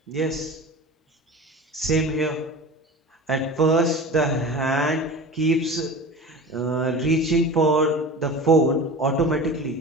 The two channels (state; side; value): normal; both; correlation 0.34